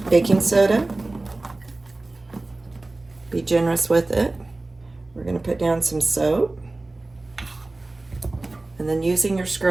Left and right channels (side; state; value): left; quieter; 3.0 dB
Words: baking soda. Be generous with it. We're going to put down some soap. And then using your